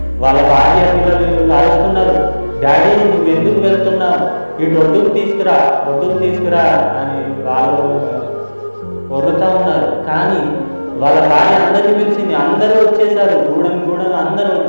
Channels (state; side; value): inverted; both; correlation -1.00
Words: వాళ్ళ భార్య పిల్లలు అరుస్తున్నారు, డాడీ నువ్వు ఎందుకు వెళ్తున్నావు, ఇటు ఒడ్డుకు తీసుకురా అని వాళ్ళు ఒర్రుతా ఉన్నారు. కానీ వాళ్ళ భార్య అందరినీ పిలిచింది, అందరూ వచ్చేసారు, గూడెం అందరూ